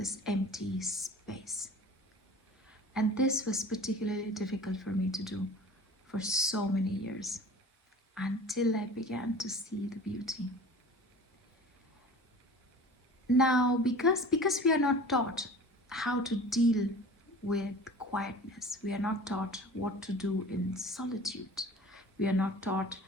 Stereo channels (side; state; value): both; normal; correlation 0.42